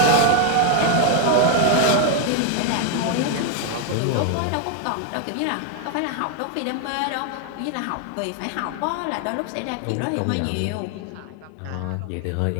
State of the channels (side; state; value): both; different; correlation 0.00